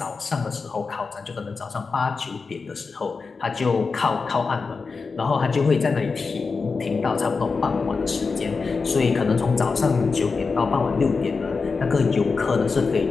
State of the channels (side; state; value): right; quieter; 4.6 dB